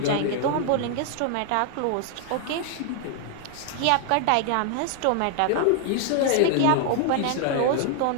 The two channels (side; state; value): both; different; correlation 0.00